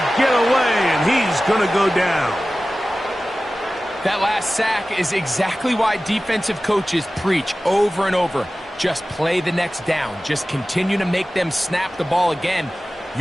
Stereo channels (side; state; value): both; normal; correlation 0.96